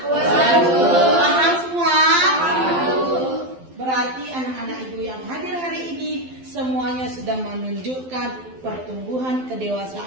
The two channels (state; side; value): late; left; 12 ms